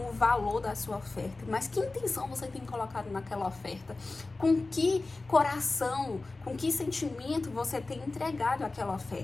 valor da sua oferta, mas que intenção você tem colocado naquela oferta? Com que coração, com que sentimento você tem entregado aquela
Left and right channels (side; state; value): right; quieter; 3.4 dB